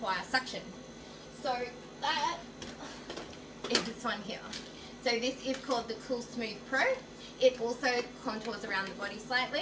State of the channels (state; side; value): identical; both; correlation 1.00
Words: suction. So that is this one here. So this is called the Cool Smooth Pro. It also contours around the body